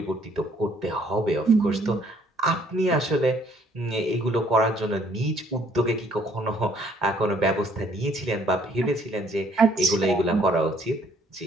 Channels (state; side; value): normal; both; correlation 0.63